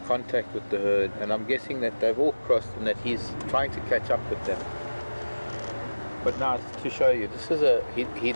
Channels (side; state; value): both; inverted; correlation -1.00